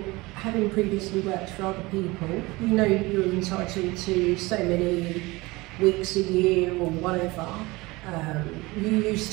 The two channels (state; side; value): quieter; left; 22.2 dB